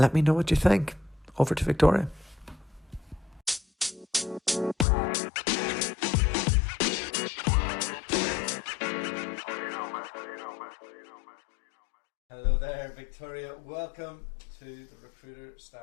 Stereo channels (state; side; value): drops out; right; at 4.9 s